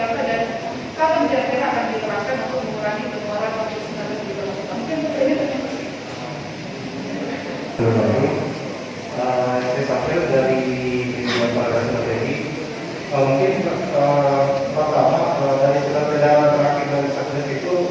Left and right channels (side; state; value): both; identical; correlation 1.00